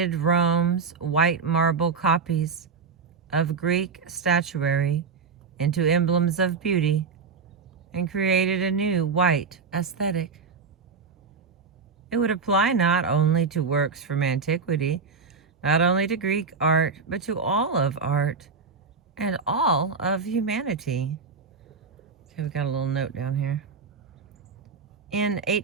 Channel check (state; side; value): quieter; left; 5.0 dB